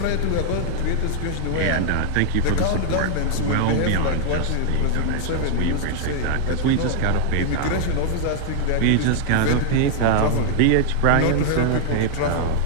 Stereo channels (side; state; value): both; different; correlation 0.00